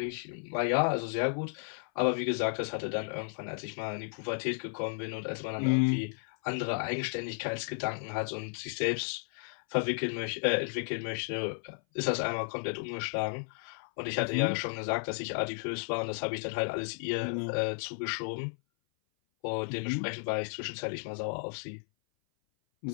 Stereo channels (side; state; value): right; silent; 55 dB below the other